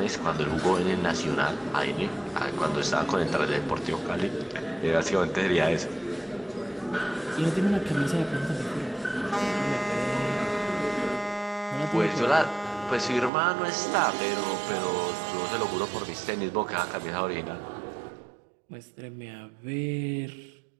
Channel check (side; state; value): left; drops out; at 13.3 s